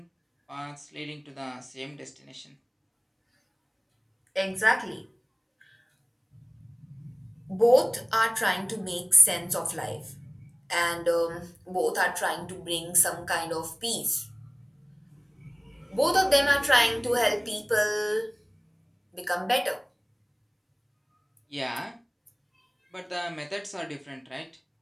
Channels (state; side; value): identical; both; correlation 1.00